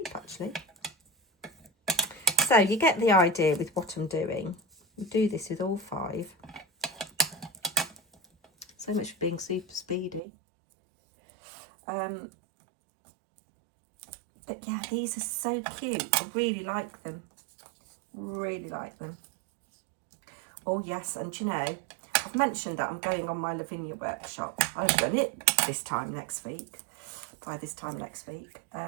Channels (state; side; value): drops out; left; at 10.2 s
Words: actually. So you get the idea with what I'm doing. We do this with all 5. So much for being super speedy. But yeah, these are so cute. I really like them. Really like them. Oh yes, and you know, I've mentioned that I'm going on my Lavinia workshop. I've done it this time next week. By this time next week.